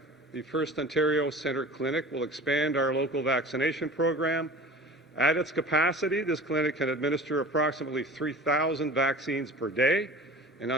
the First Ontario Centre Clinic will expand our local vaccination program. At its capacity, this clinic can administer approximately 3,000 vaccines per day, and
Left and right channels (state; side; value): normal; both; correlation 0.39